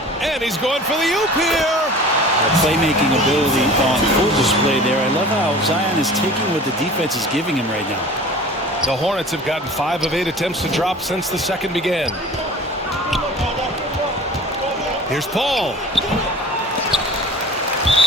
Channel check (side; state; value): both; normal; correlation 0.42